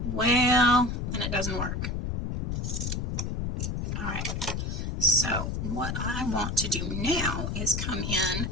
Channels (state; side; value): noise; left; rumble, 2 dB below the sound